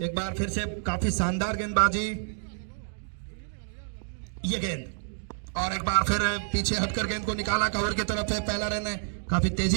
एक बार फिर से काफी शानदार गेंदबाजी। ये गेंद, और एक बार फिर पीछे हटकर गेंद को निकाला, कवर की तरफ है। पहला रन है, काफी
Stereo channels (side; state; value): left; silent; digital silence